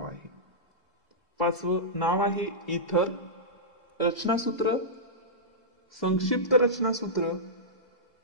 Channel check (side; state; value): both; normal; correlation -0.14